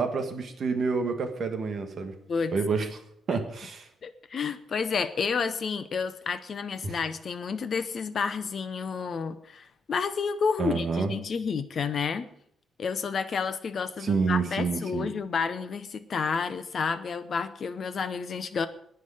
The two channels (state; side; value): normal; both; correlation 0.77